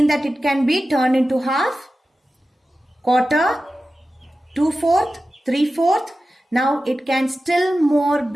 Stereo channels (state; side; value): normal; both; correlation 0.94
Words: that it can be turned into half, quarter, 2/4, 3/4. Now it can still more